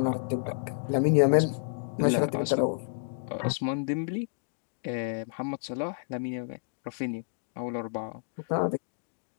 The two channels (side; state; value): right; silent; digital silence